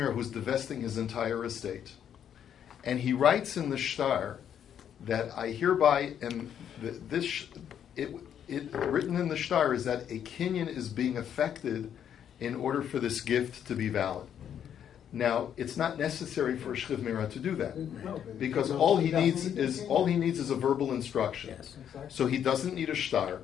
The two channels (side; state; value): right; quieter; 9.2 dB